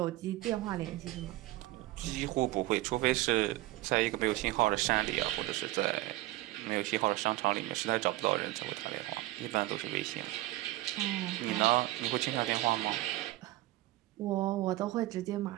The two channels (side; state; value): left; quieter; 17.7 dB